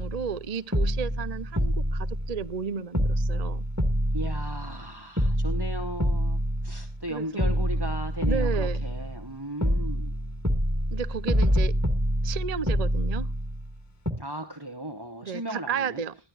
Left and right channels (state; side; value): late; left; 1.7 ms